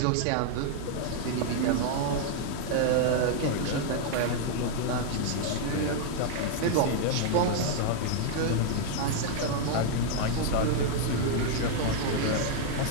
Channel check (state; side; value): different; both; correlation 0.00